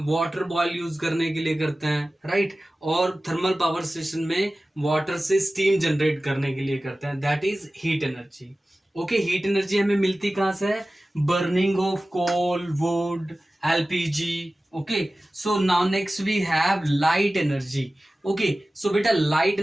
वाटर बॉयल यूज करने के लिए करते हैं, राइट, और थर्मल पावर स्टेशन में वाटर से स्टीम जनरेट करने के लिए करते हैं, that is heat energy, okay. Heat energy हमें मिलती कहाँ से है, burning of coal, wood, LPG, okay. So now next we have light energy, okay. So बेटा लाइट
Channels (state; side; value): normal; both; correlation 0.96